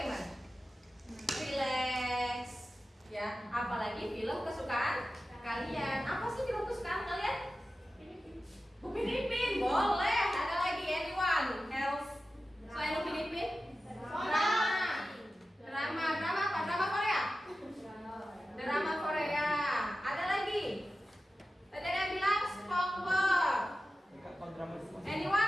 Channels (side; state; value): both; normal; correlation 0.94